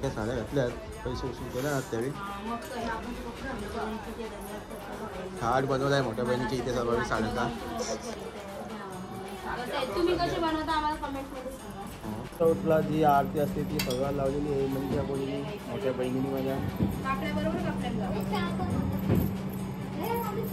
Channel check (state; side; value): identical; both; correlation 1.00